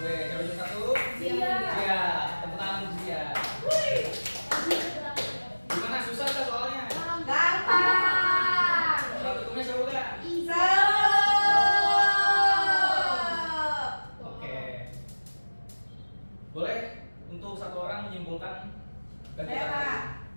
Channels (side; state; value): both; inverted; correlation -1.00